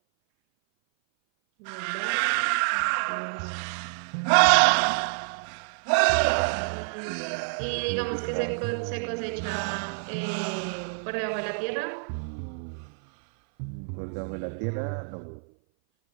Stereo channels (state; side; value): silent; left; 57 dB below the other